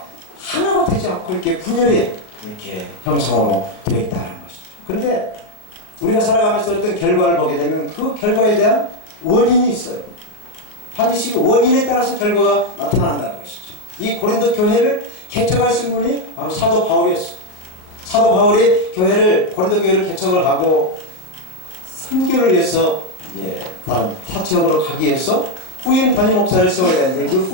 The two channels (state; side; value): late; right; 39 ms